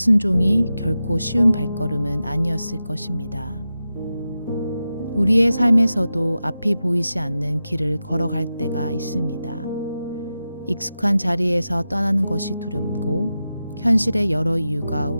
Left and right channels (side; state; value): both; inverted; correlation -0.92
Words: 결코 쉬운 발걸음은 아니었을 것입니다. 우리의 삶에서도 앞이 보이지 않는 길을 걸어갈 때가 있습니다. 익숙한 자리에서 떠나는 것이 두렵고 현실의 여러 이유가